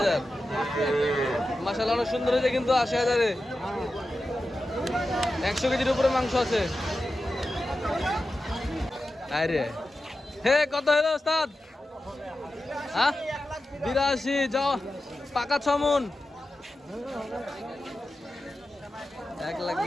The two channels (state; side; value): normal; both; correlation 0.92